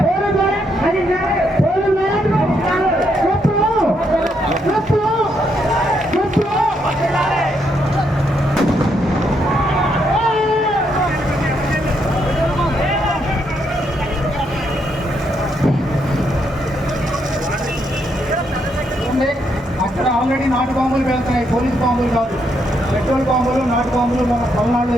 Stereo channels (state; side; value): normal; both; correlation 0.76